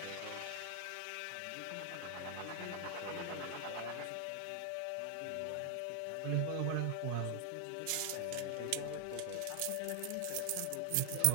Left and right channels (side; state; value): both; different; correlation 0.00